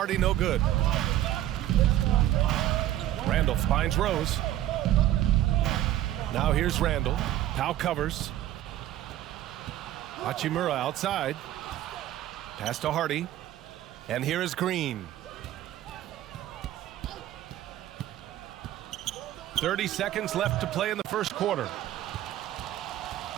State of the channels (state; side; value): quieter; left; 13.2 dB